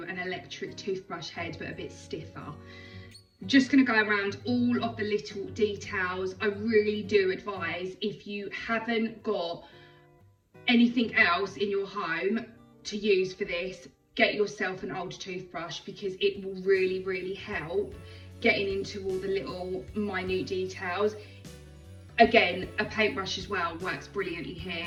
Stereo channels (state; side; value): identical; both; correlation 1.00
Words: an electric toothbrush head, but a bit stiffer. Just going to go around all of the little details. I really do advise, if you haven't got anything else in your home to use for this, get yourself an old toothbrush, because it will really help getting into all the little minute details. Again, a paintbrush as well works brilliantly